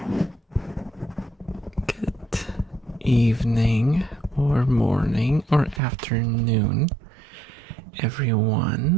Good evening, or morning, or afternoon,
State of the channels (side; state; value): left; drops out; at 5.8 s